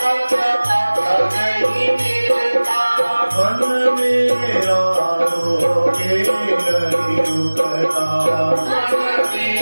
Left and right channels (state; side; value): inverted; both; correlation -1.00